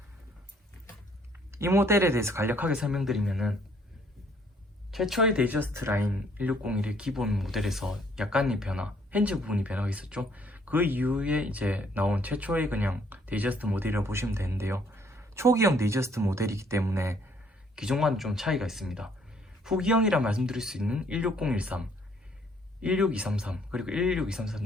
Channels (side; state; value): both; normal; correlation 0.63